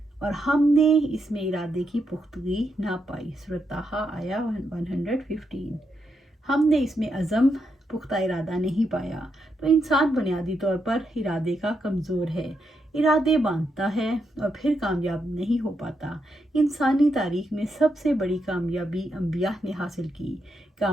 اور ہم نے اس میں ارادے کی پختگی نہ پائی۔ سورۃ طٰہٰ آیا 115۔ ہم نے اس میں عزم پختہ ارادہ نہیں پایا، تو انسان بنیادی طور پر ارادے کا کمزور ہے۔ ارادے باندھتا ہے اور پھر کامیاب نہیں ہو پاتا۔ انسانی تاریخ میں سب سے بڑی کامیابی انبیاء نے حاصل کی۔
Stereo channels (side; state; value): both; normal; correlation 0.82